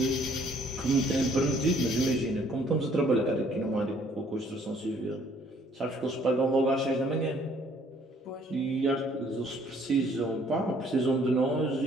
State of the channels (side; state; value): both; normal; correlation 0.62